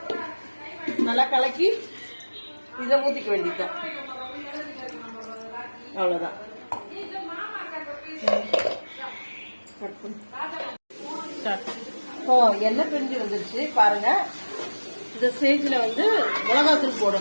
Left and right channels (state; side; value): inverted; both; correlation -1.00